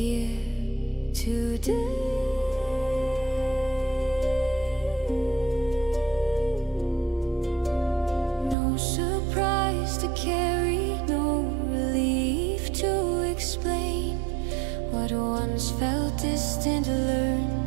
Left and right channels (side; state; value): left; drops out; at 8.6 s